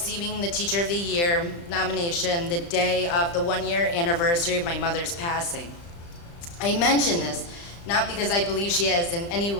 the Teacher of the Year nomination the day of the 1-year anniversary of my mother's passing. I mention this not because I believe she is in any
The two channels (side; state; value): right; late; 35 ms